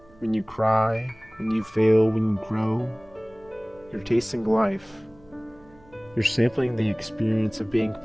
when you cry, when you fail, when you grow, you're tasting life. You're sampling the experience of being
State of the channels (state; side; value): noise; right; hum, 28 dB below the sound